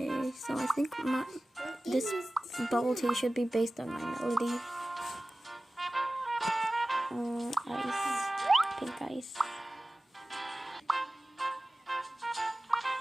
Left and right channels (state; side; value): normal; both; correlation 0.97